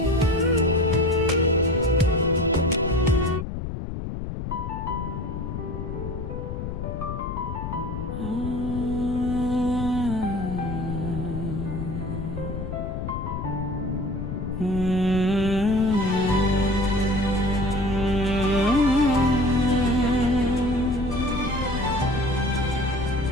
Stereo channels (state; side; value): noise; left; rumble, 6 dB below the sound